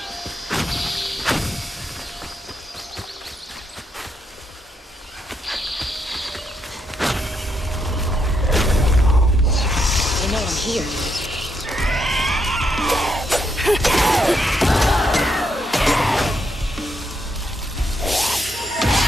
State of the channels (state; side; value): normal; both; correlation 0.79